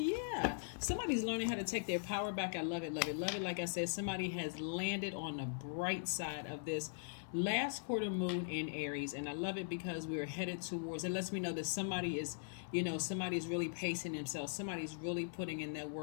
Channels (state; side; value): silent; right; 51 dB below the other